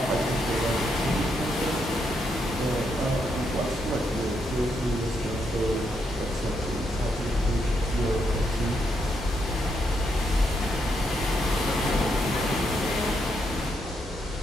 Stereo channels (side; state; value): both; normal; correlation 0.79